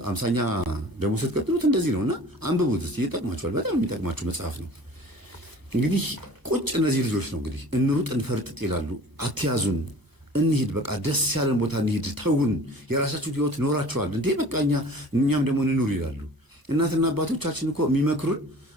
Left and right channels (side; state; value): left; late; 1.0 ms